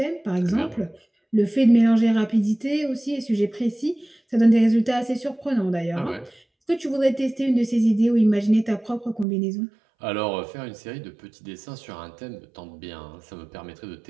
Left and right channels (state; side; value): drops out; left; at 9.2 s